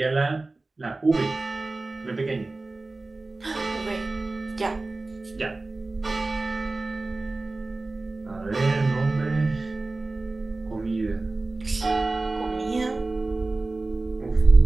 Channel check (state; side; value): quieter; left; 3.3 dB